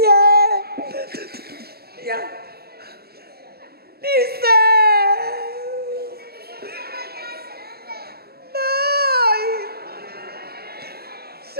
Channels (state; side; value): late; left; 0.46 ms